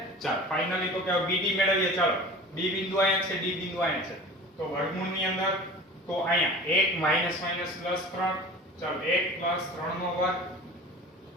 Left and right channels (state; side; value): normal; both; correlation 0.39